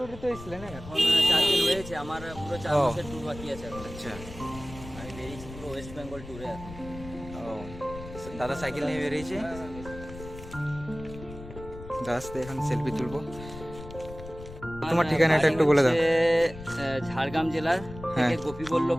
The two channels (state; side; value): noise; left; rumble, 14 dB below the sound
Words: তো এসেছিলেন না? এখন 4 দিন হয়েছে, আমার পুরো 4 মাসের ট্যুর বাকি আছে এখন। আচ্ছা, আমি বেরিয়েছি পুরো ওয়েস্ট বেঙ্গল ট্যুরে এখন। ও দাদা সাইকেল নিয়ে বেরিয়েছে। দাদার সাথে এখন সেলফি তুলবো। তোমার ঠিকানাটা একটু বলে দাও। ঝাড়গ্রাম জেলার হ্যাঁ। থেকে